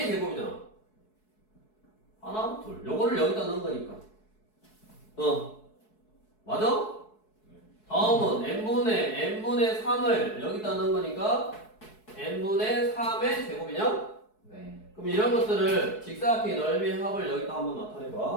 제곱이잖아. 하나, 둘. 요거를 여기다 넣은 거니까. 맞아? 다음은 n분의 3을 여기다 넣은 거니까 n분의 3의 제곱이냐? 네. 그럼 이런 것들을 직사각형의 넓이 합을 여기다 한번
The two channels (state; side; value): late; right; 4.7 ms